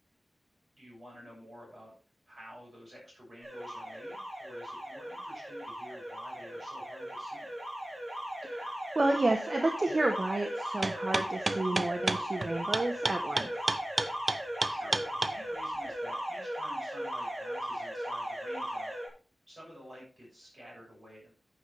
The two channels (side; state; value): both; normal; correlation 0.97